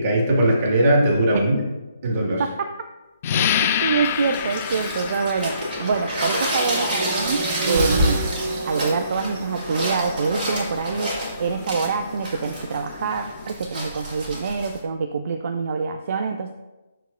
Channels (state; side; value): inverted; both; correlation -0.67